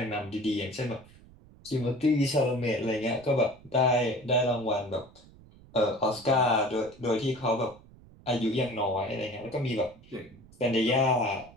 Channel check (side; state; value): right; noise; rumble, 24 dB below the sound